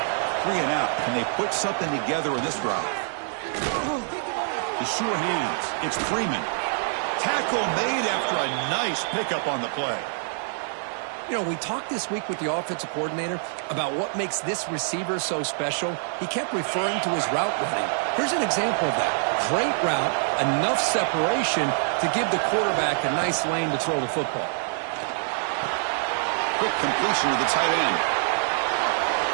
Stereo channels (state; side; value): silent; left; digital silence